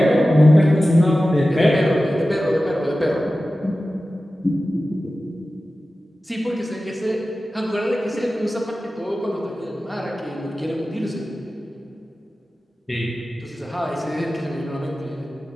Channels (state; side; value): normal; both; correlation 0.95